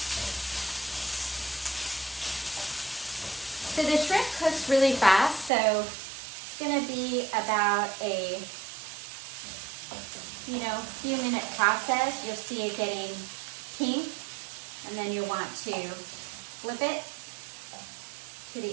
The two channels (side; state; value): left; drops out; at 5.5 s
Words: So the shrimp cooks really fast, so it's gonna be about a few minute process. You'll see it getting pink, and then you'll want to flip it to